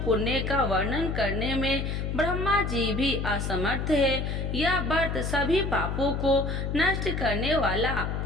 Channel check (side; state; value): left; noise; hum, 2 dB below the sound